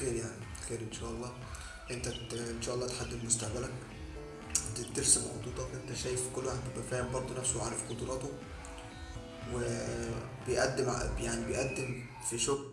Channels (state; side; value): identical; both; correlation 1.00